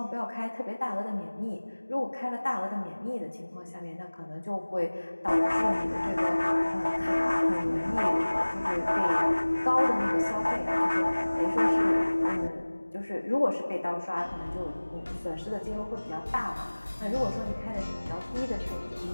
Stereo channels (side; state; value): both; inverted; correlation -1.00